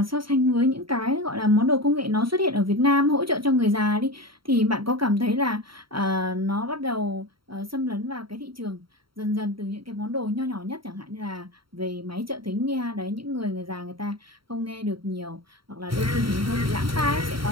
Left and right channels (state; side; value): late; left; 0.74 ms